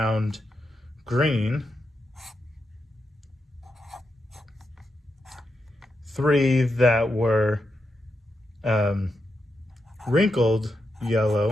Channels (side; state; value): both; normal; correlation 0.85